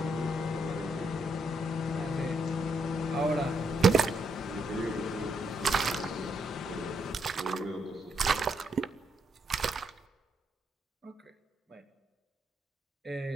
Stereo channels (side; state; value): both; normal; correlation 0.77